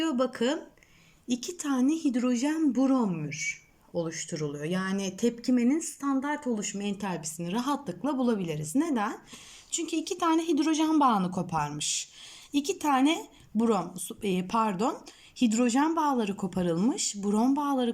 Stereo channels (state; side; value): identical; both; correlation 1.00